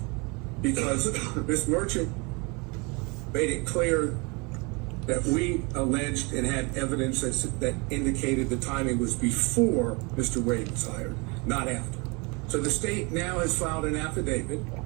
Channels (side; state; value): left; quieter; 29.0 dB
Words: because Ms. Merchant made it clear that we alleged and had evidence that indicated the timing was before Mr. Wade was hired, not after. So the state now has filed an affidavit